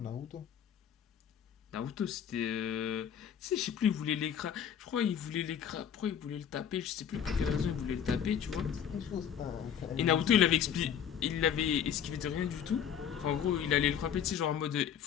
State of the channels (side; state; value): right; quieter; 8.6 dB